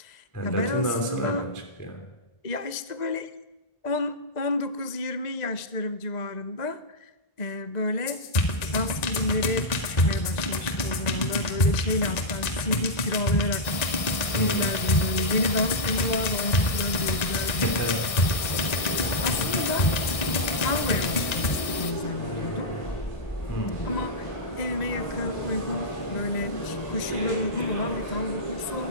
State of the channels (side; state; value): right; late; 1.6 ms